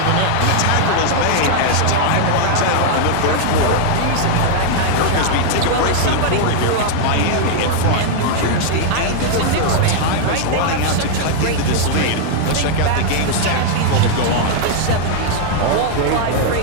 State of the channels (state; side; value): different; both; correlation 0.00